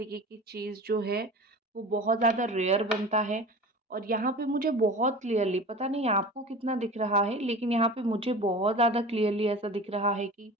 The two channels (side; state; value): both; normal; correlation 0.35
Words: की चीज़ जो है, वो बहुत ज़्यादा रेयर बनता है और यहाँ पे मुझे बहुत क्लियरली, पता नहीं आपको कितना दिख रहा है, लेकिन यहाँ पे मुझे बहुत ज़्यादा क्लियरली ऐसा दिख रहा है कि